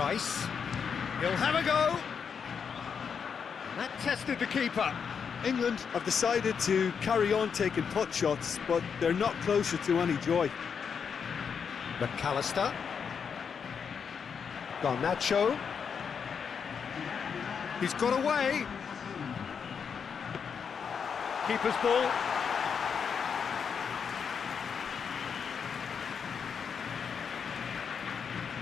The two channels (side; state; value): right; quieter; 6.6 dB